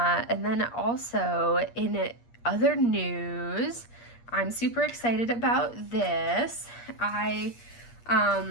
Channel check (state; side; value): late; right; 8.5 ms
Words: then also in other news, I'm super excited about this. I've